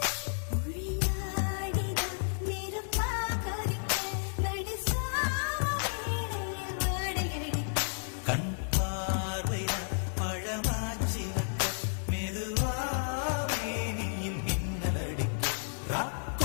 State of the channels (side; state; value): right; silent; digital silence